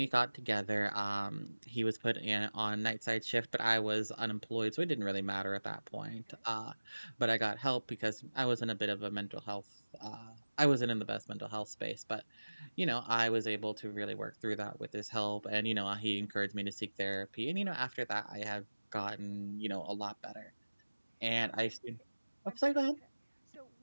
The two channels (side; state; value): both; inverted; correlation -1.00